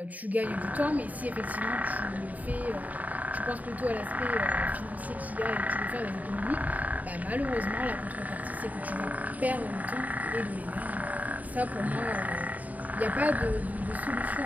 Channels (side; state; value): left; late; 0.075 ms